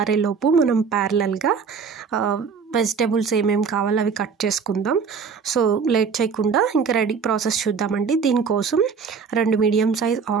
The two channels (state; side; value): quieter; left; 5.8 dB